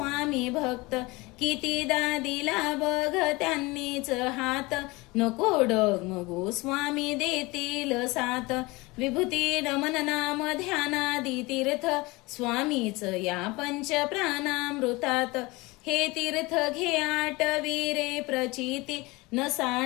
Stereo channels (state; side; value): quieter; right; 23.3 dB